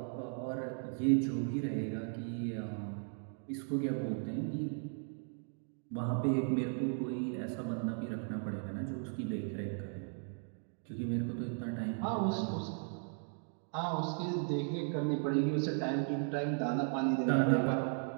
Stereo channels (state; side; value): silent; left; 53 dB below the other